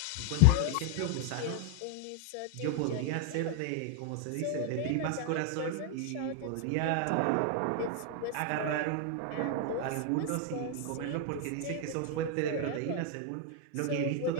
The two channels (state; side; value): different; both; correlation 0.00